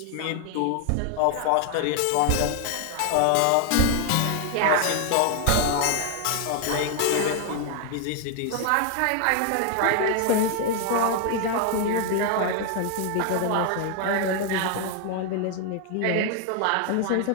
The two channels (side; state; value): both; different; correlation 0.00